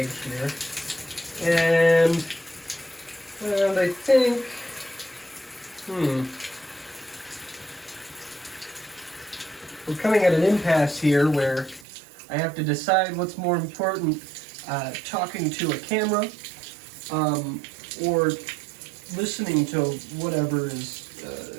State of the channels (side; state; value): left; drops out; at 11.9 s